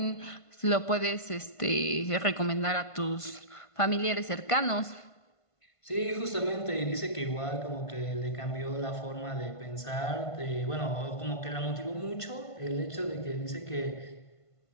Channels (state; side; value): late; right; 1.5 ms